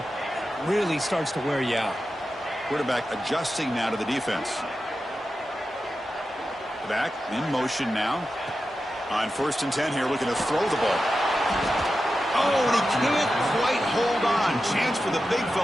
really starts to wear you out. Quarterback adjusting now to the defense. Back in motion now. On 1st and 10 here, looking to throw the ball. Oh, and he can't quite hold on. Chance for the big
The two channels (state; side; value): normal; both; correlation 0.91